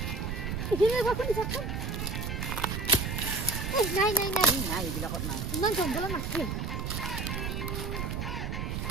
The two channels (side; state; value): right; noise; rumble, 2 dB below the sound